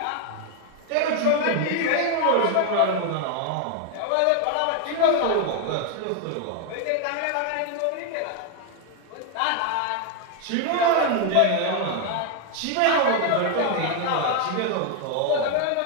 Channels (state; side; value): different; both; correlation 0.00